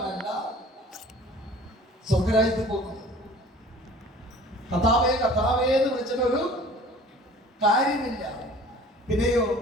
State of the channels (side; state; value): both; normal; correlation 0.47